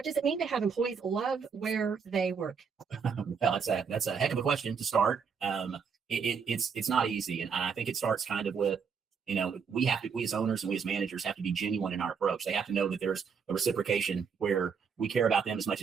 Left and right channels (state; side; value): quieter; left; 6.2 dB